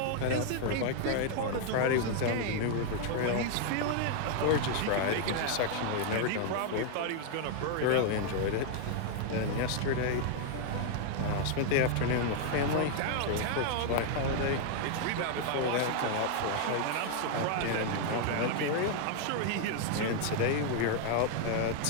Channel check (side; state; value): both; different; correlation 0.00